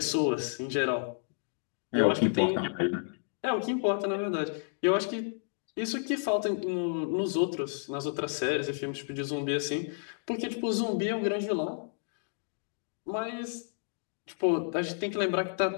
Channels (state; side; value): silent; right; digital silence